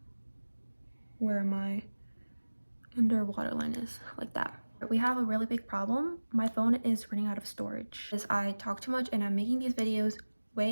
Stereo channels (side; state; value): both; inverted; correlation -1.00